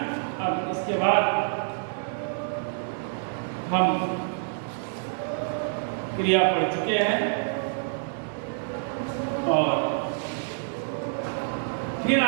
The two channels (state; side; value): silent; left; digital silence